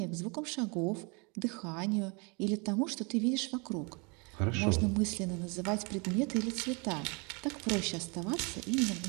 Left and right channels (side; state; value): left; quieter; 31.7 dB